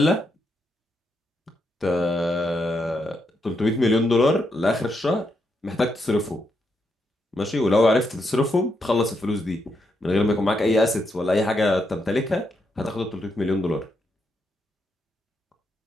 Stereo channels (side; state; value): both; normal; correlation 0.80